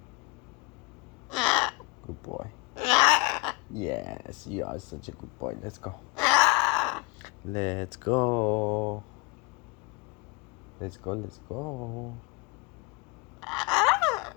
Good boy. Yes, you are such a good boy. Let's go. Let's go. Let's go, let's go.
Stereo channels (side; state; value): right; quieter; 26.4 dB